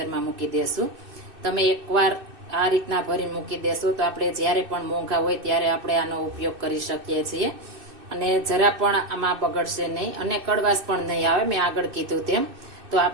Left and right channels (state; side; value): late; left; 2.6 ms